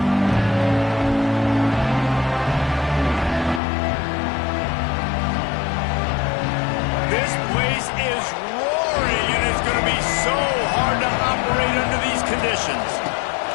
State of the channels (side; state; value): right; drops out; at 3.6 s